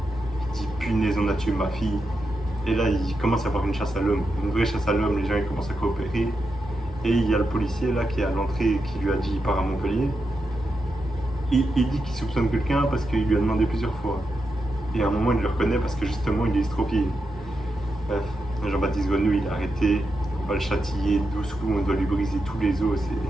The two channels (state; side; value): normal; both; correlation 0.87